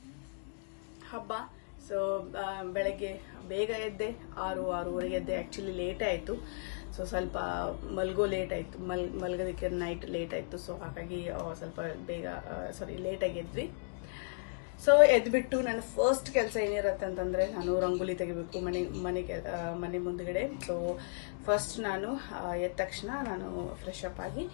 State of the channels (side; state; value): right; silent; digital silence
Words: ಹಬ್ಬ. ಸೊ ಬೆಳಗ್ಗೆ ಬೇಗ ಎದ್ದೆ, 6-6:30 ಎದ್ದೆ. ಆ್ಯಕ್ಚುಲಿ ಲೇಟ್ ಆಯಿತು. ಸೊ ಸ್ವಲ್ಪ ಮಲ್ಗೋ ಲೇಟ್ ಆಯಿತು, ಮಲ್ಗೋದಕ್ಕೆ ನೈಟ್ ಲೇಟ್ ಆಯಿತು. ಸೊ ಹಾಗಾಗಿ ಸ್ವಲ್ಪ ಲೇಟಾಗಿ ಎದ್ವಿ. ಸೊ ಎದ್ಬಿಟ್ಟು ನನ್ನ ಫಸ್ಟ್ ಕೆಲಸ ಏನಿರುತ್ತೆ ಅಂತಂದರೆ, ನಾನು ರಂಗೋಲಿ ತೆಗಿಬೇಕು ಮನೆ ಮುಂದ್ಗಡೆ. ಸೊ ಫಸ್ಟ್ ನಾನು ಎದ್ದ ತಕ್ಷಣ ನಾನು ಫ್ರೆಶ್ ಅಪ್ ಆಗಿ